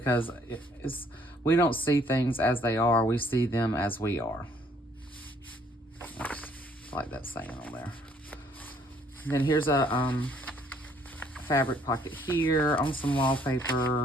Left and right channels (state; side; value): normal; both; correlation 0.63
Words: we don't see things as they are. We see them as we are. I like that saying on there. And then here's a fabric pocket here on some